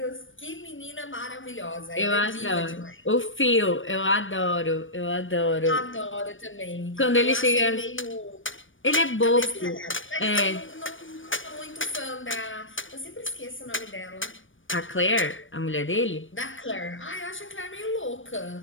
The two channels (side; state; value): right; late; 0.57 ms